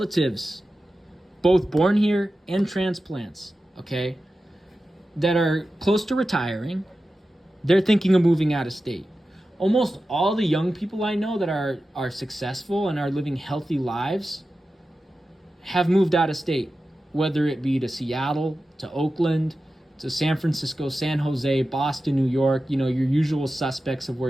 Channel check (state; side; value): normal; both; correlation 0.93